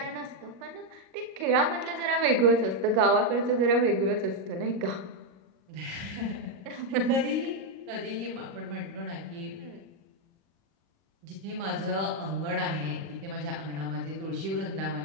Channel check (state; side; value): late; left; 38 ms